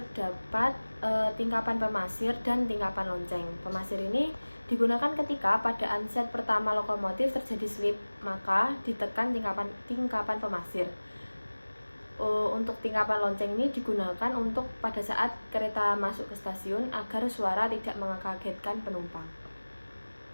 tingkapan pemasir dan tingkapan lonceng. Pemasir ini digunakan ketika pada unset pertama lokomotif terjadi slip, maka ditekan tingkapan pemasir. Untuk tingkapan lonceng ini digunakan untuk pada saat kereta masuk ke stasiun agar suara tidak mengagetkan penumpang.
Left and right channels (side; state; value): both; inverted; correlation -1.00